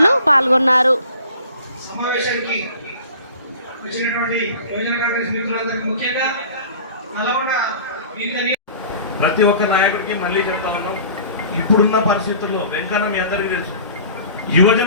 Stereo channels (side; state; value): both; inverted; correlation -0.44